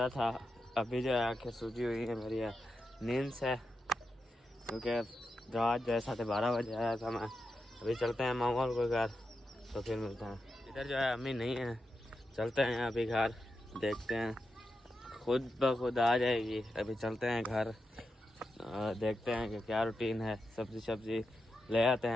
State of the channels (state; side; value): normal; both; correlation 0.88